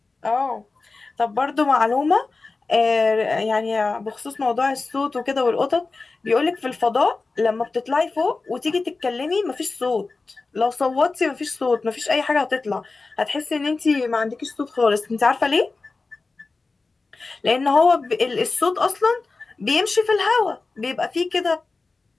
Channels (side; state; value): right; quieter; 3.8 dB